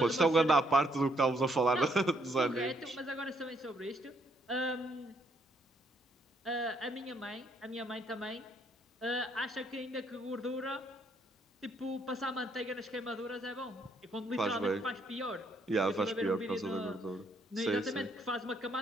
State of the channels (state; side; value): normal; both; correlation 0.70